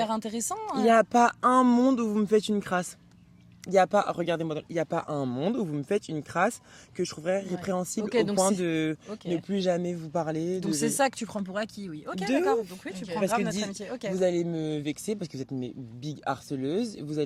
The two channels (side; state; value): both; identical; correlation 1.00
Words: intéressant. Il n'y a pas un monde où vous me faites une crasse. Il n'y a pas, regardez-moi, il n'y a pas un monde où vous me faites une crasse que je trouverais répréhensible Ok, au donc point c'est- de Ok. ne plus jamais vous parler. Donc c'est ça que tu prends pour acquis, oui. Ok, De d'accord. ouf. Donc oui, tu Ok. prends Parce grave que notre dis- amitié. Ok. Vous allez me vexer parce que vous êtes mes big harceleuses. Vous